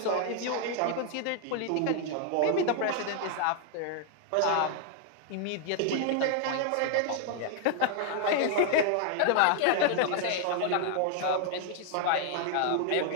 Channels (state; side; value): different; both; correlation 0.00